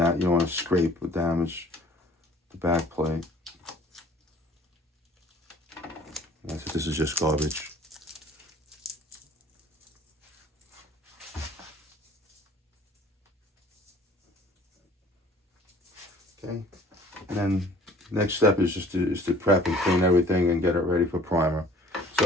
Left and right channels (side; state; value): both; normal; correlation 0.52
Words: want to scrape or damage the back plate. This is just garbage. Okay, and then next step is just to prep and clean everything and get it ready for primer.